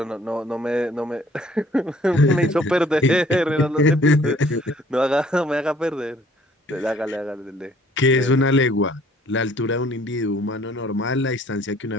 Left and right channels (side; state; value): both; normal; correlation 0.58